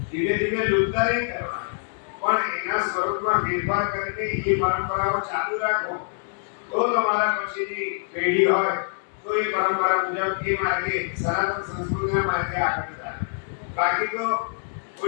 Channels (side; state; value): right; silent; digital silence